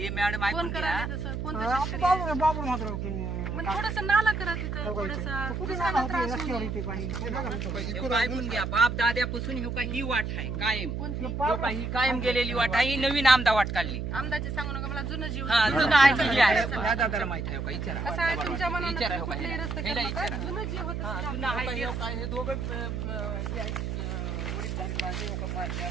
हे मॅडम ऐकून घ्या. बाबू मात्र थोडस नाला करा तिथं ऐकून घ्या. बाप दाद्यापासून हे का ही वाट आहे कायम. ही कायम गेलेली वाट आहे. ही नवीन आमदा वाट काढली. आमदाचे सांगू नका मला जुनं जीव जुनं ऐकली आहे. दादाला माहित आहे का विचारा. कसं आहे तुमच्या मनात विचारा कुठलाही रस्ता केला का? जुनं जीव होतं जुनं आहे काय हे दोघं हे आहेत वडील झाली माणसं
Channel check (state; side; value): noise; right; hum, 3 dB below the sound